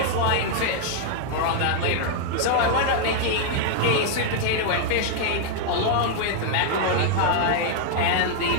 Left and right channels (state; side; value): different; both; correlation 0.00